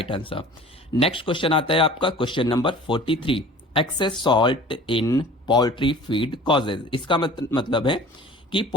answer. Next question आता है आपका question number 43, excess salt in poultry feed causes. इसका मतलब है कि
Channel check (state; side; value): normal; both; correlation 0.45